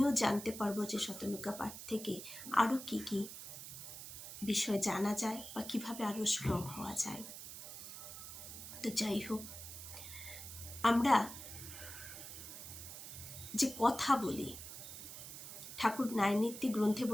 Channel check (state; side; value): noise; right; hiss, 11 dB below the sound